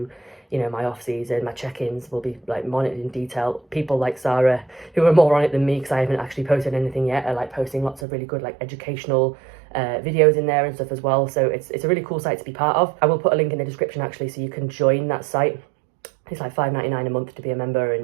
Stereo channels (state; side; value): drops out; left; at 8.1 s